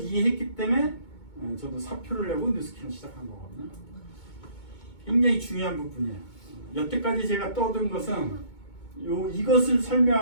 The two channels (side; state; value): right; late; 2.2 ms